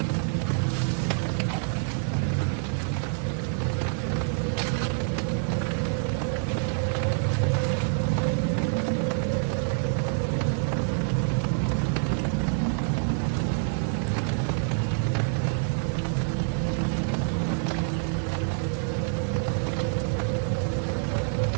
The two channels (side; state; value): left; silent; digital silence